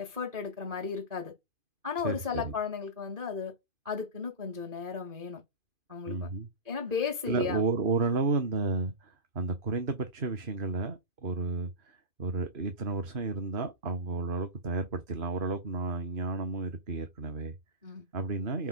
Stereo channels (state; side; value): late; left; 2.5 ms